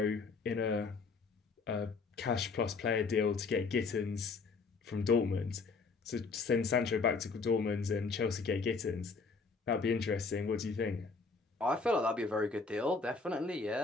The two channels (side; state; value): right; quieter; 4.4 dB